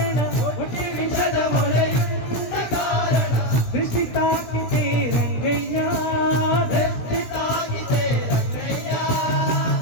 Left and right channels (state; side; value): late; right; 16 ms